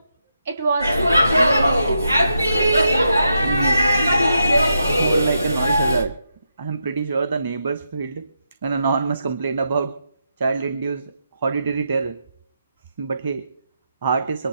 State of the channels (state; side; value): inverted; both; correlation -0.83